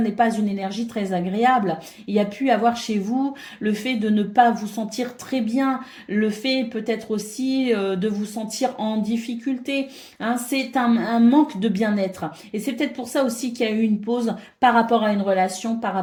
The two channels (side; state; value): both; identical; correlation 1.00